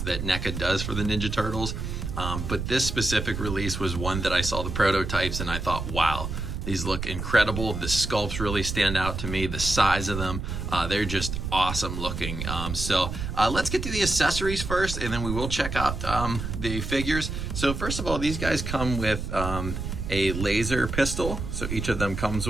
that NECA does for the Ninja Turtles, but this specific release was one that I saw the prototypes and I thought, wow, these look incredible. The sculpts really stand out to me. The size of them, they're just awesome looking. So let's get to the accessories first, and then we will check out the figures. So first of all, these guys come with a laser pistol. So each of them comes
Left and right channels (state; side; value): noise; right; rumble, 5 dB below the sound